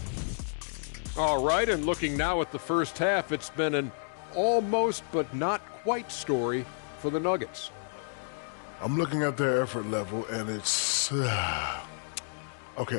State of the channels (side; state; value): right; silent; digital silence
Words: All right, and looking now at the first half, it's been an almost but not quite story for the Nuggets. I'm looking at their effort level, and it's...